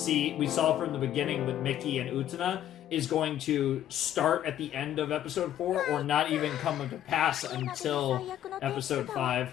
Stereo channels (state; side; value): quieter; right; 11.5 dB